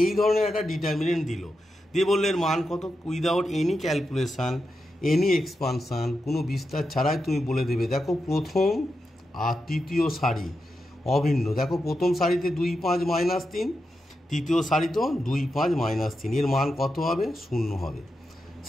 এই ধরনের একটা ডিটারমিনেন্ট দিল, দিয়ে বললে এর মান কত? Without any calculation, any expansion, কোনো বিস্তার ছাড়াই তুমি বলে দেবে দেখো প্রথম আর তৃতীয় সারি অভিন্ন। দেখো প্রথম সারিতে 2 5 -3, তৃতীয় সারিতেও 2 5 -3, এর মান কত হবে? 0 হবে।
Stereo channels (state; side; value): normal; both; correlation 0.87